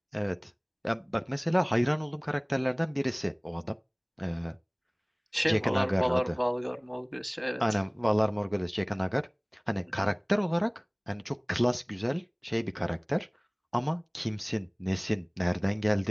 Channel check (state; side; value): identical; both; correlation 1.00